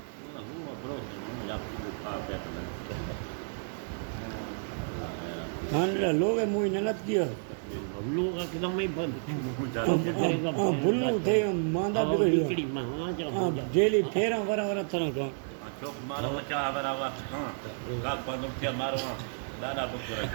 हाँ लोग है मुझे नलत किया लोग एकदम ही बंद बुल्लू थे मांदा बिगड़ी हाँ जेली फेरा वरा वरा तरह का चौक मारो बच्चा बराबर हाँ का बंद थे मारो दादा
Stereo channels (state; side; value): silent; left; digital silence